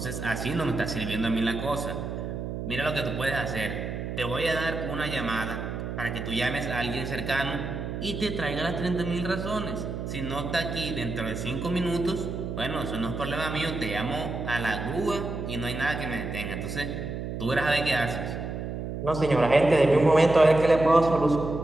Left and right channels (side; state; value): right; noise; hum, 5 dB below the sound